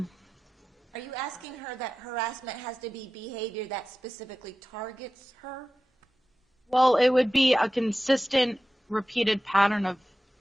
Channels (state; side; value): normal; both; correlation 0.94